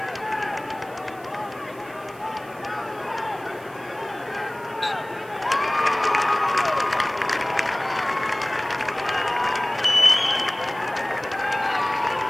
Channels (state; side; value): noise; right; hiss, 24 dB below the sound